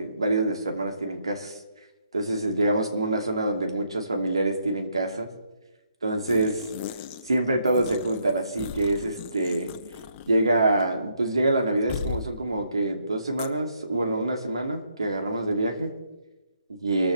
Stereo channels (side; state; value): both; inverted; correlation -0.74